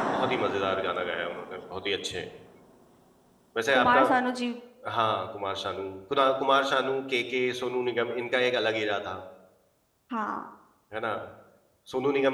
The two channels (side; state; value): both; identical; correlation 1.00